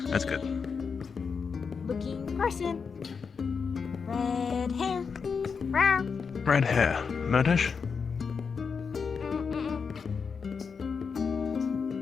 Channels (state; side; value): quieter; right; 5.7 dB